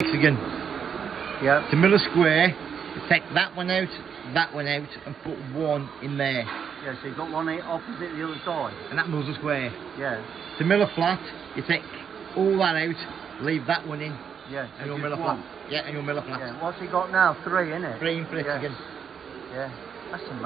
again. Yeah. To mill a square, you take that one out, and put one in there. Yeah, so you've got one opposite the other side. And that mills a square. Yeah. To mill a flat, you take all that out, leave that one in. Yeah. And you'll mill a flat. One. Yeah, and you'll mill a flat. Yeah. What's he got now? 3, isn't it? 3 in for it yeah. again. Yeah. That's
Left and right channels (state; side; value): quieter; left; 7.3 dB